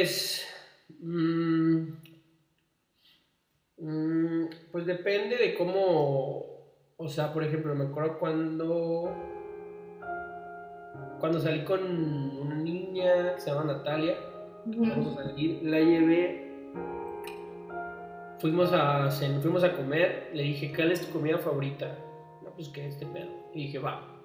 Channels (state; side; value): identical; both; correlation 1.00